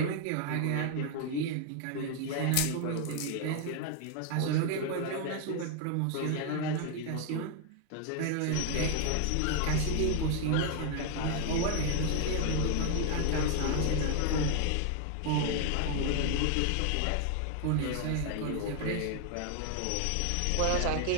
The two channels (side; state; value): both; different; correlation 0.01